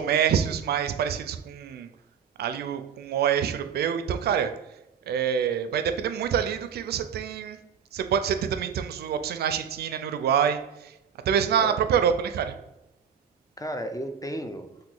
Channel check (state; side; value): quieter; left; 7.6 dB